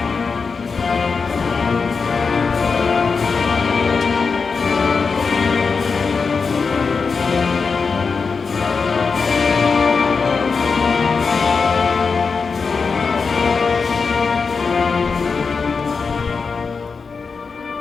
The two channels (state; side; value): quieter; right; 5.0 dB